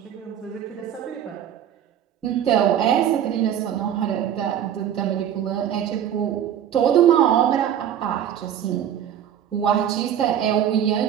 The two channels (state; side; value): quieter; left; 9.9 dB